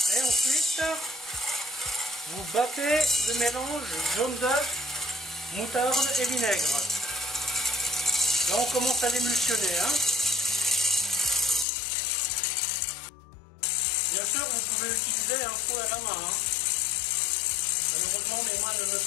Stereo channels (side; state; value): right; drops out; at 11.7 s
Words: Et ensuite, vous battez le mélange jaune d'œuf, moutarde et vinaigre. Là, on commence à l'émulsionner. Bien sûr, vous pouvez utiliser un fouet à la main. Malheureusement, mes mains ne me